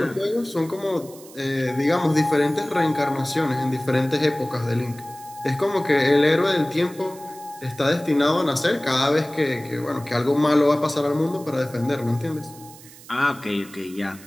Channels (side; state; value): right; noise; hiss, 20 dB below the sound